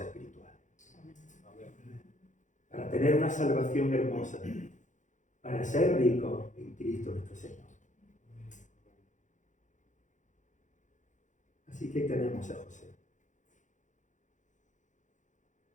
espirituales. Para tener una salvación hermosa, para ser ricos en Cristo nuestro Señor. Así que tenemos a José.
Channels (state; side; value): late; right; 0.36 ms